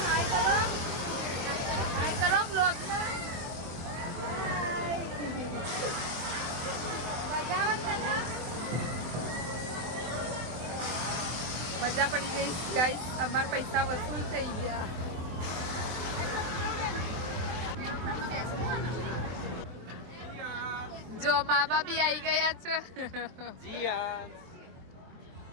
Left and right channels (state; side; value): late; left; 23 ms